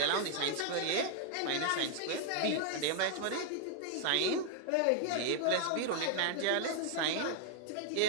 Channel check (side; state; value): both; different; correlation 0.00